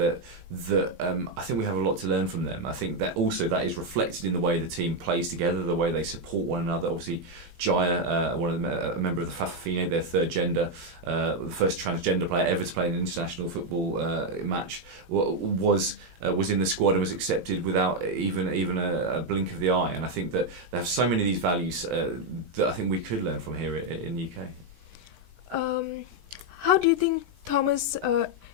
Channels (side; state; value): left; late; 18 ms